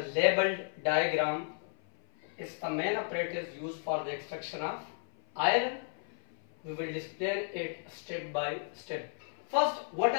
labeled diagram is the main apparatus used for the extraction of iron. We will display it step by step. First, what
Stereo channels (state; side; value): silent; right; 55 dB below the other